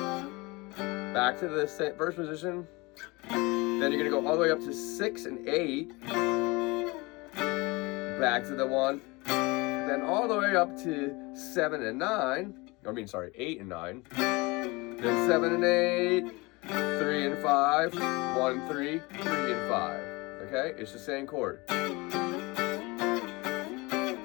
back to the first position. Then you're gonna go all the way up to 6 and 8, back to the 1, then all the way up to 7 and 9. 8 and 9. Then 7 and 8. 3 and 5, 1, 3, 3 and 5. Okay, it's the same chord. You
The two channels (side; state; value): right; quieter; 24.7 dB